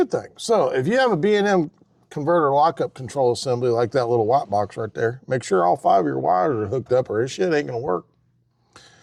thing. So if you have a B&M converter lockup control assembly like that little white box right there, make sure all 5 of your wires are hooked up or this shit ain't gonna work.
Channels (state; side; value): identical; both; correlation 1.00